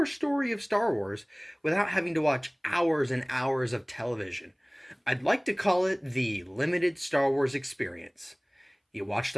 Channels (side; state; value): both; identical; correlation 1.00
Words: story of Star Wars without having to watch hours and hours of television. I'd like to call it the limited Star Wars experience. You watch